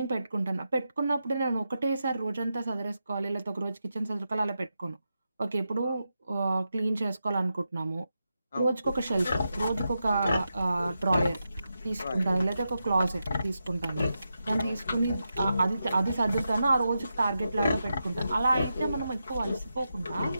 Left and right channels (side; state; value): both; inverted; correlation -0.88